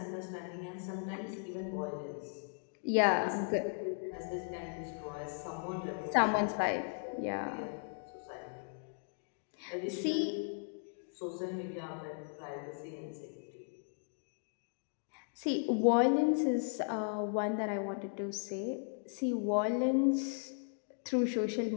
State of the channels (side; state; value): right; silent; digital silence